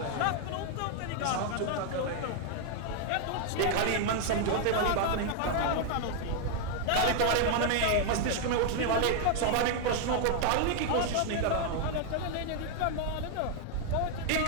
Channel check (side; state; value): both; different; correlation 0.00